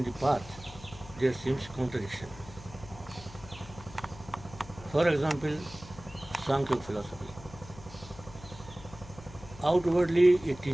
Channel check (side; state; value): left; noise; hum, 17 dB below the sound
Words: the path, there seems contradiction. For example, Sankhya philosophy. Outwardly, it